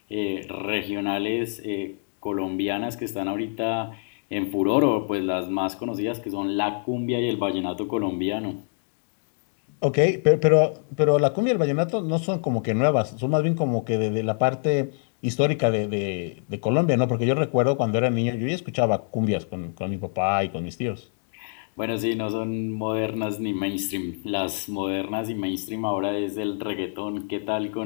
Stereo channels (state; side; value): silent; right; digital silence